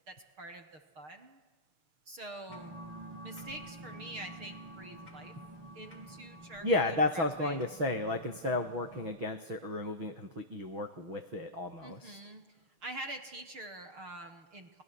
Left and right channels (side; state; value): left; late; 6.5 ms